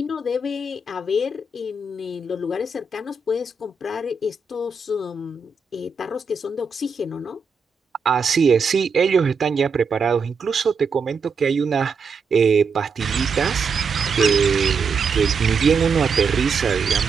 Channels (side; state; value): left; quieter; 4.6 dB